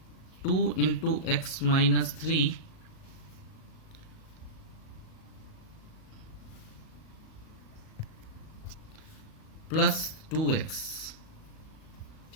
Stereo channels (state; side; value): late; right; 37 ms